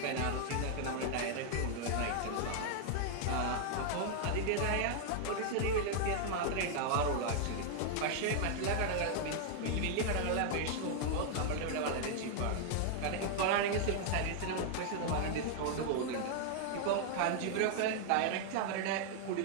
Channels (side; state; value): both; different; correlation 0.00